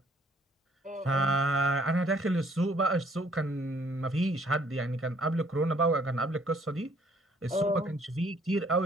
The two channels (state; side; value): normal; both; correlation 0.62